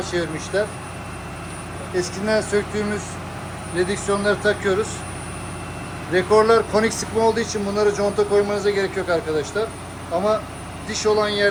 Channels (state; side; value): identical; both; correlation 1.00